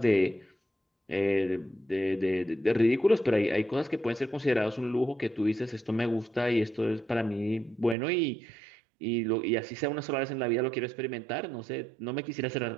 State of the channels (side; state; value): left; drops out; at 8.0 s